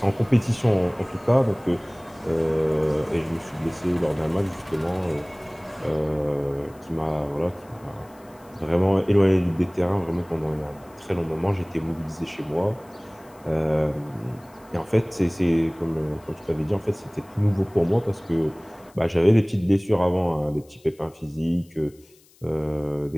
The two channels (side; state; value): left; noise; hiss, 29 dB below the sound